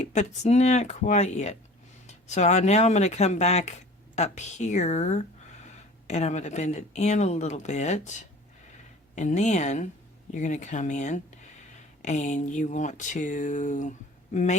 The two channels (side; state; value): both; normal; correlation 0.45